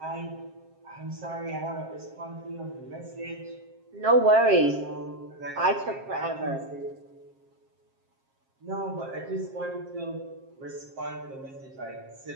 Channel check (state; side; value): late; left; 7.5 ms